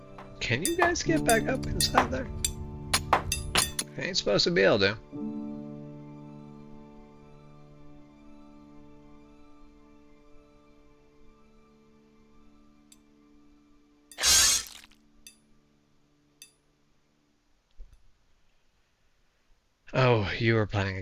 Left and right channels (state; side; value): identical; both; correlation 1.00